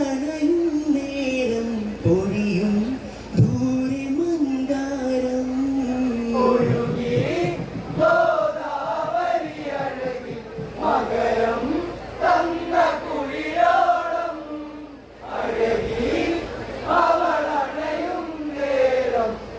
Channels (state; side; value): identical; both; correlation 1.00